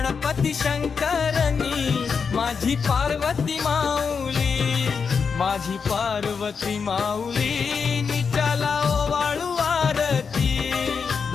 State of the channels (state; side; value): quieter; right; 5.8 dB